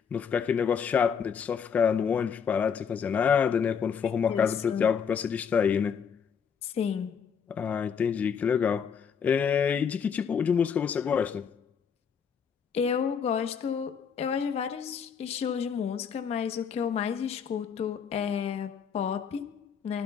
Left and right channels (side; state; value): right; quieter; 6.9 dB